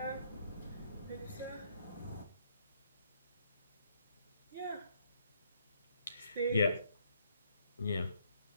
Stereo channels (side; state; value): both; inverted; correlation -0.70